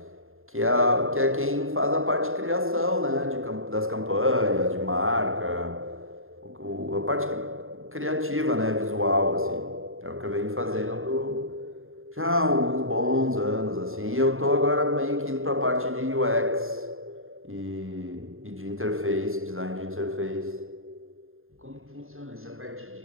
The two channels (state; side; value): late; left; 0.61 ms